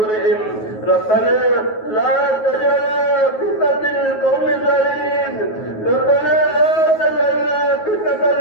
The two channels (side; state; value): right; late; 9.3 ms